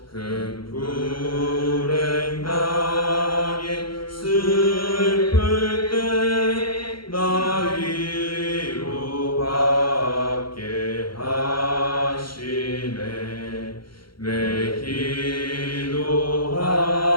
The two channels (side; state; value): right; late; 0.73 ms